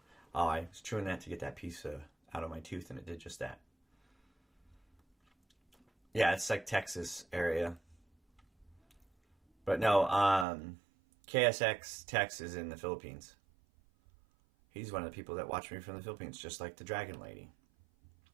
Oh, I was chewing that to get that piece out of my tooth, and it did just that. Yeah, it's like Texas area. But no, KSX Tex is in the Philippines. He's one of the people that watch me from the Philippines, just like the Dragon Lady.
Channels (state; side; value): drops out; left; at 10.5 s